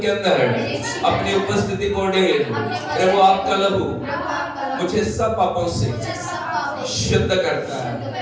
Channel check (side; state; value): both; identical; correlation 1.00